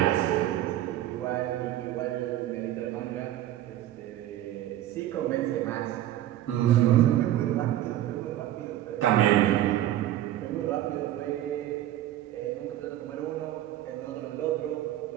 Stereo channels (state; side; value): quieter; left; 13.2 dB